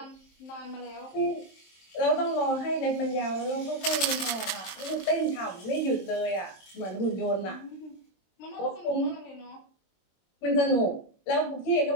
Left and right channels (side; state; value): right; late; 23 ms